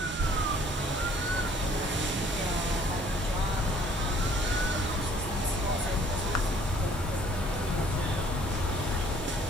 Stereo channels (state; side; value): normal; both; correlation 0.58